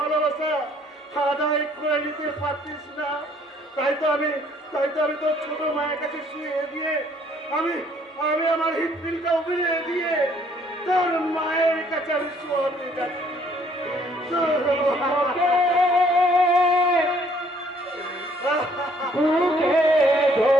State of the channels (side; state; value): both; normal; correlation 0.63